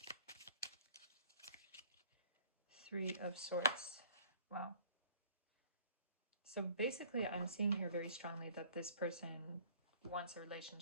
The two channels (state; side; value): inverted; both; correlation -0.54